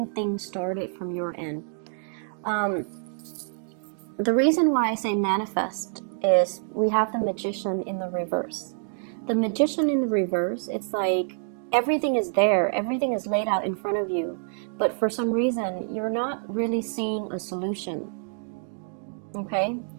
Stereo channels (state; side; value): silent; left; digital silence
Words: things started from your end. The reason why I say manifest is we have the Magician in the reverse. The Magician in the reverse, it's like everything is there, everything is laid out in front of you, but for some reason you're not really seeing a solution. Okay?